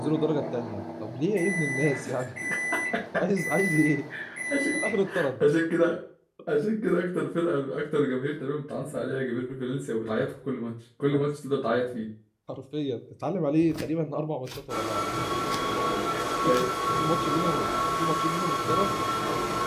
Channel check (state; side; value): identical; both; correlation 1.00